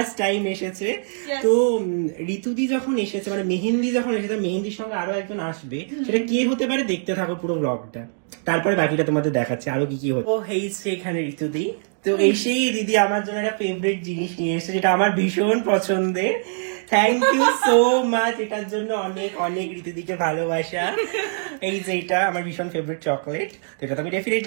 টাইম এসেছে। তো ঋতুদি যখন এসেছে, মানে মেহেন্দি যখন এসেছে, মেহেন্দির সঙ্গে আরো একজন আসবে। সেটা কে হতে পারে দেখতে থাকো পুরো ব্লগটা, তারপরে বাকিটা তোমাদের দেখাচ্ছে আরো কি কি হচ্ছে। ও হেইছে এখানে ঋতুদি। তো এসেই দিদি আমার জন্য একটা ফেভারিট জিনিস নিয়ে এসেছে, যেটা আমার ভীষণ পছন্দের। থ্যাংক ইউ সো মাচ, এটার জন্য অনেক অনেক ঋতুদিকে ভালোবাসা। এই যে এটা আমার ভীষণ ফেভারিট চকলেট, তো এটা তো আমি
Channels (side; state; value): left; silent; digital silence